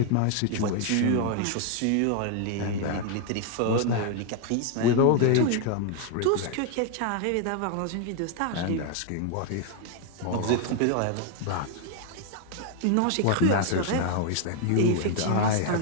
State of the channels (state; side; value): different; both; correlation 0.00